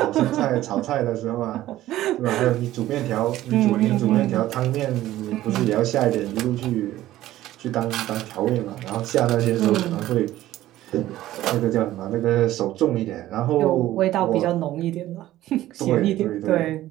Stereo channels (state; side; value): quieter; left; 14.7 dB